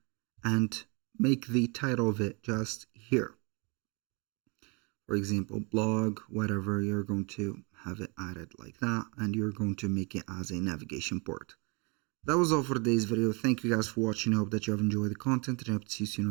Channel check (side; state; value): left; quieter; 31.5 dB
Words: and make the title of it just here. For example, blog, whatever, you're going to have it added like that, and you're going to make it as a navigation port. That was all for today's video. Thank you guys for watching. I hope that you have enjoyed the content, and I hope to see you soon